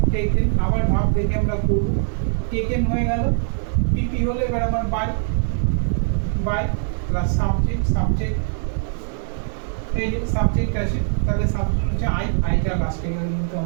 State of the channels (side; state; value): left; silent; 64 dB below the other